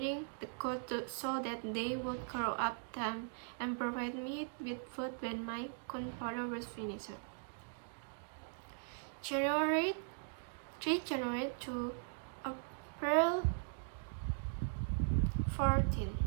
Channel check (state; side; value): silent; left; digital silence